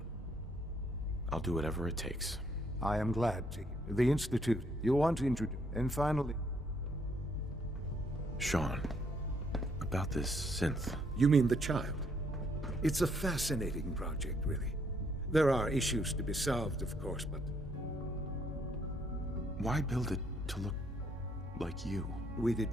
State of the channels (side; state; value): both; normal; correlation 0.70